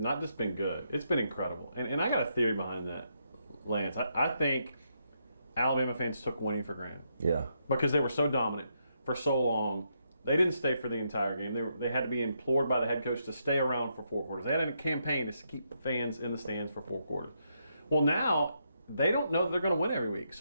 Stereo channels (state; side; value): inverted; both; correlation -0.79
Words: just been good, it's been incredible. And I got a theory behind that, Lance. I think Alabama fans took winning for granted. Yeah. Because they were so dominant for so long. They didn't stay for the entire game. They had to be implored by the head coach to stay around for 4 quarters. They had a campaign to keep the fans in the stands for 4 quarters. Well, now they don't know that they're going to win every week.